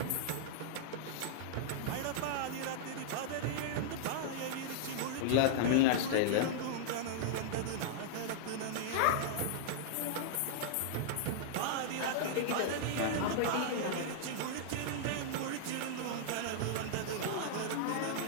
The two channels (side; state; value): both; different; correlation -0.02